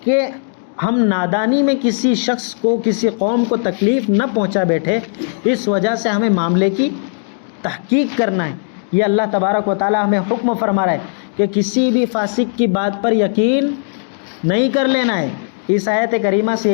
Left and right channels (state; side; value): silent; right; digital silence